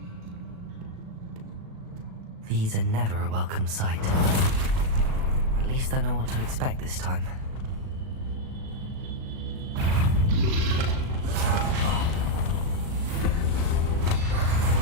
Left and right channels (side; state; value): left; late; 37 ms